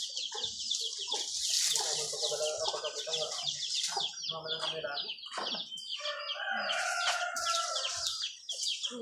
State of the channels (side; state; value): both; identical; correlation 1.00